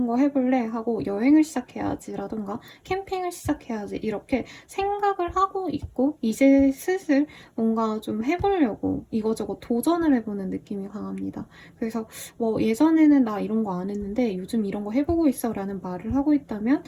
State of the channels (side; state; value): both; identical; correlation 1.00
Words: 거 해볼래 하고 여행을 시작해야지 라던가 캠핑을 시작해야지 이렇게 생각을 하고 있고 이제 슬슬 뭔가 좀 해보려고 이거저거 도전을 해보는 느낌이 강합니다. 그래서 뭐 예전에는 나 이런 거 안 했는데 요즘 이런 거 해보고 있어 라는 말을 하고 있다면